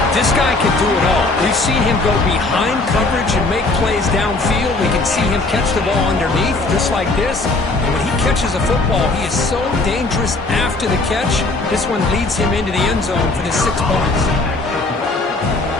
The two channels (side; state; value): right; quieter; 3.2 dB